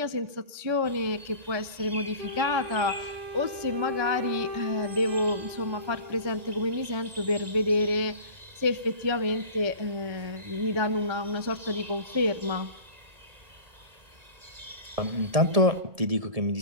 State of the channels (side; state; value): left; late; 1.9 ms